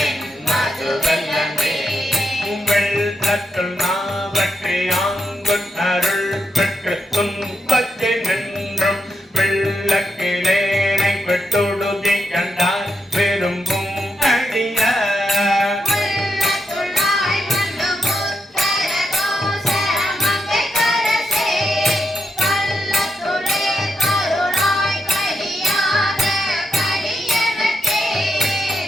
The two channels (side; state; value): both; normal; correlation 0.83